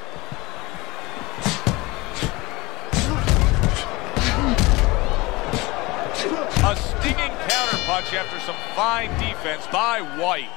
A stinging counterpunch after some fine defense by White.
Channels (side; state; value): right; quieter; 22.5 dB